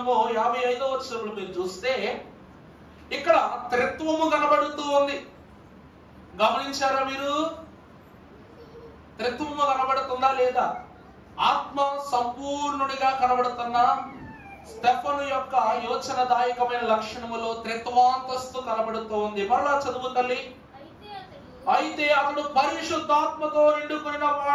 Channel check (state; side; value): identical; both; correlation 1.00